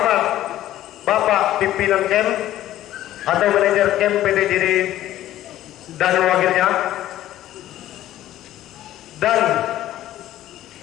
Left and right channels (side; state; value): right; quieter; 13.5 dB